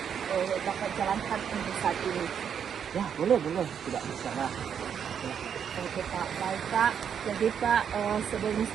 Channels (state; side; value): quieter; left; 7.9 dB